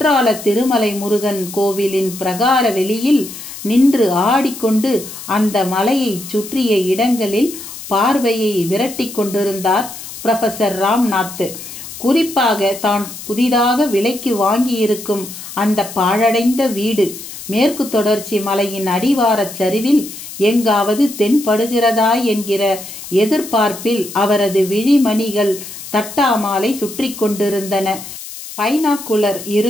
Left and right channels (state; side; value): noise; left; hiss, 12 dB below the sound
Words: திருமலை முருகன் கோவிலின் பிரகார வெளியில் நின்று ஆடிக்கொண்டு அந்த மலையை சுற்றிய இடங்களில் பார்வையை விரட்டி கொண்டிருந்தார் புரொஃபசர் ராம்நாத். குறிப்பாக தான் புதிதாக விலைக்கு வாங்கியிருக்கும் அந்த பாழடைந்த வீடு மேற்கு தொடர்ச்சி மலையின் அடிவாரச் சரிவில் எங்காவது தென்படுகிறதா என்கிற எதிர்பார்ப்பில் அவரது விழிமணிகள் தட்டாமாலை சுற்றி கொண்டிருந்தன. பைனாக்குலர்